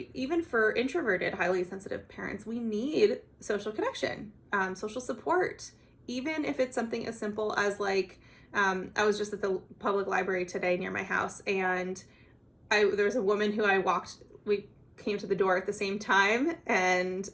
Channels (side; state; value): both; identical; correlation 1.00